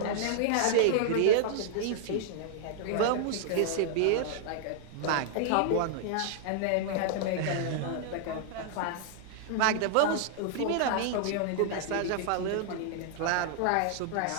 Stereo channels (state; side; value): different; both; correlation -0.01